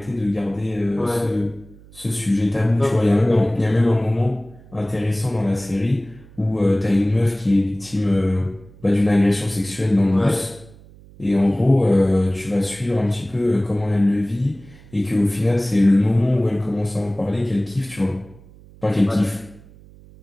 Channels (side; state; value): right; noise; hum, 23 dB below the sound